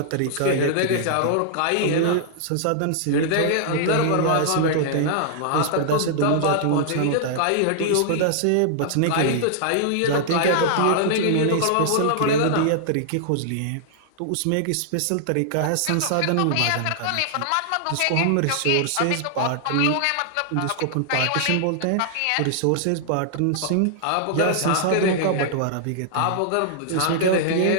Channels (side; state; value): both; different; correlation -0.01